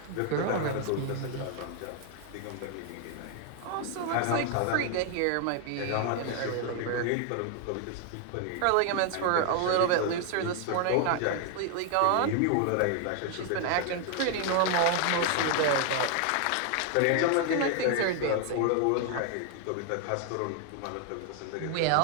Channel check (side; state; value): both; different; correlation 0.00